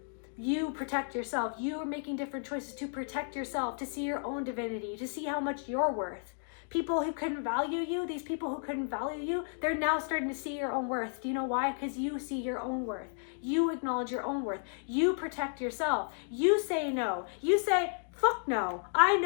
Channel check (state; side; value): silent; right; digital silence